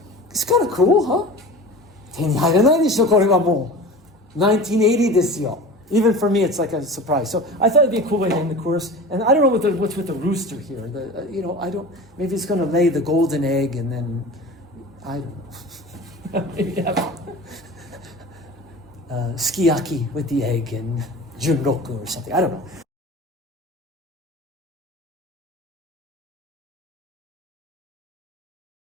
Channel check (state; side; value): normal; both; correlation 0.36